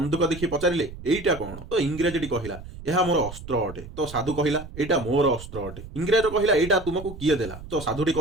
ଦେଖି ପଚାରିଲେ, ଏଇଟା କ'ଣ? ତ ଇଂରେଜଟି କହିଲା, ଏହା ମୋର ଅସ୍ତ୍ର ଅଟେ। ତ ସାଧୁ କହିଲା, ଏଇଟା ମୋର ଅସ୍ତ୍ର ଅଟେ। ଇଂରେଜ କହିଲା, ଏଇଟା ତୁମକୁ କିଏ ଦେଲା? ତ ସାଧୁଟି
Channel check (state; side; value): noise; right; rumble, 13 dB below the sound